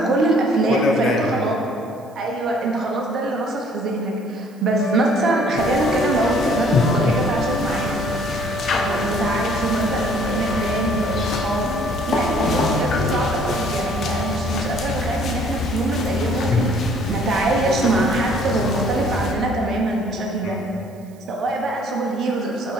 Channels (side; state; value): right; noise; hiss, 30 dB below the sound